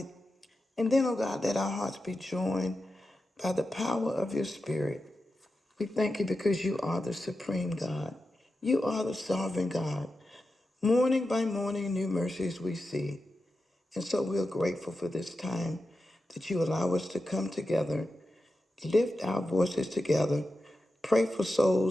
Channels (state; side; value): normal; both; correlation 0.90